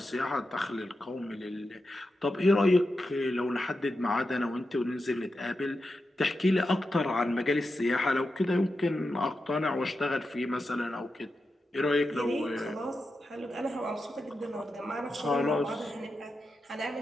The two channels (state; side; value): normal; both; correlation 0.89